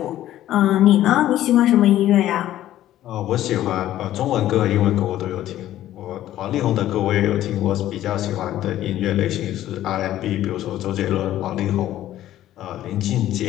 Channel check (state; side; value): quieter; right; 13.2 dB